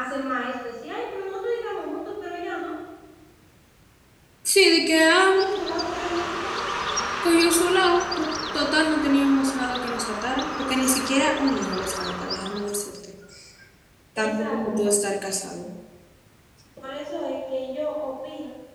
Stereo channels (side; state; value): both; identical; correlation 1.00